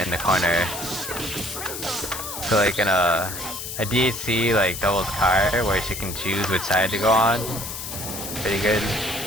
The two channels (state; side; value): noise; left; hiss, 7 dB below the sound